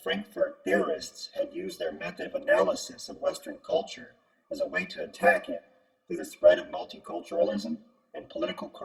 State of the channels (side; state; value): both; identical; correlation 1.00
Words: theorists had used their method of analysis of Western culture as a way to attack it through the spread of multiculturalism and political